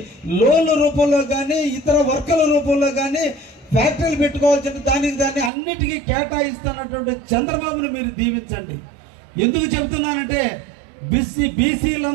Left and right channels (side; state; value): left; drops out; at 5.5 s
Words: లోన్ల రూపంలో కానీ ఇతర వర్కుల రూపంలో కానీ ఫ్యాక్టరీలు పెట్టుకోవాల్సిన దాన్ని అన్నిటికీ కేటాయిస్తున్నటువంటి చంద్రబాబును మీరు దీవించండి. ఎందుకు చెబుతున్నానంటే